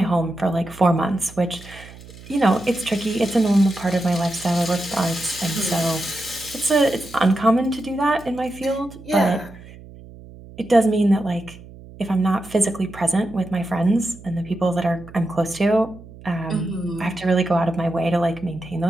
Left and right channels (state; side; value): noise; right; hum, 18 dB below the sound